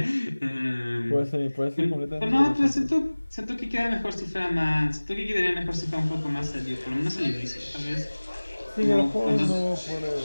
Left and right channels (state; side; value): inverted; both; correlation -1.00